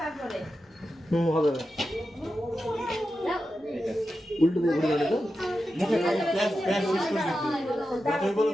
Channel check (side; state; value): both; normal; correlation 0.90